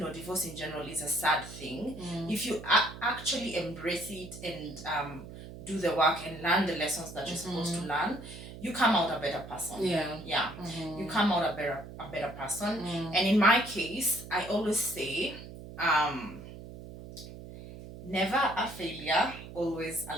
in general, is a sad thing, if you actually embrace it and do the work and learn the lessons that you're supposed to learn, you come out a better person. You come out a better person. And in my case, I always say, never a failure, always a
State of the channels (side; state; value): right; noise; hum, 13 dB below the sound